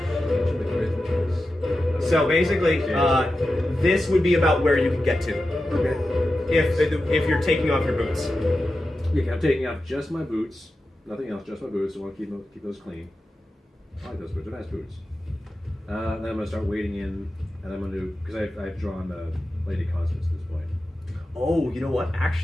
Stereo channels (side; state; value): both; normal; correlation 0.92